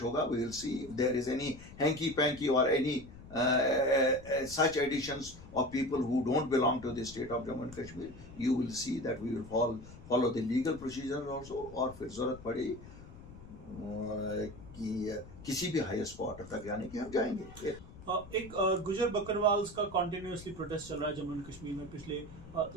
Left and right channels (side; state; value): left; noise; rumble, 17 dB below the sound